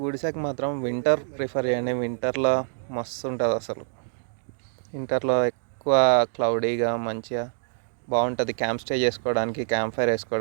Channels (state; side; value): silent; left; digital silence